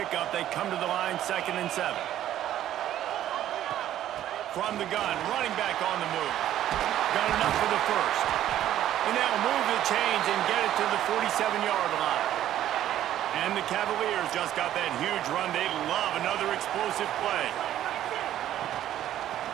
they come to the line, 2nd and 7. From the gun, running back on the move. Got enough for the first. And they'll move the chains and get it to the 47-yard line. And the Cavaliers just got that huge run. They love another explosive play.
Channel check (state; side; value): quieter; left; 12.1 dB